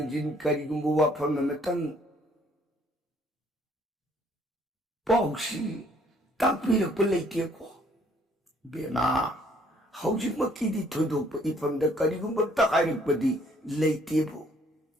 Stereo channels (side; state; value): both; normal; correlation 0.62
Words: करीगुंबु वाफम नमतंग पाउसी ताकपिरक लेतेको बेमा हौजिक मकीदी थोदोप इफमद करीगुंबु तकारिकपदी लेतेबो